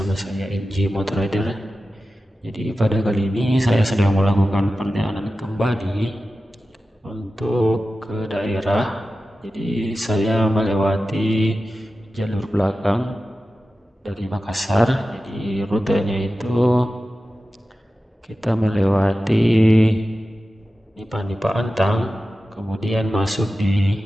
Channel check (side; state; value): both; normal; correlation 0.94